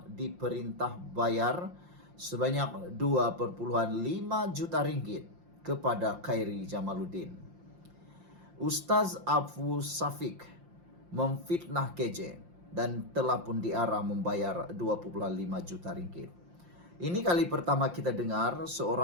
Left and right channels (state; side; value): late; left; 5.7 ms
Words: diperintah bayar sebanyak 2,5 juta ringgit kepada Khairi Jamaluddin. Ustaz Abu Safik memfitnah KJ dan telah pun diarah membayar 2,5 juta ringgit. Ini kali pertama kita dengar